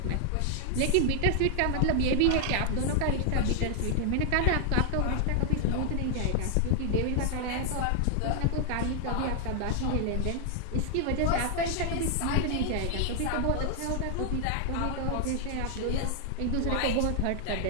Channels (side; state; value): both; different; correlation 0.00